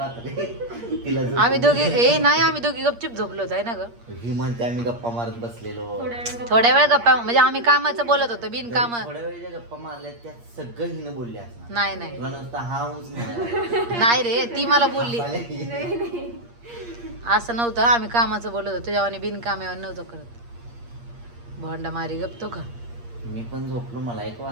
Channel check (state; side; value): late; left; 8.5 ms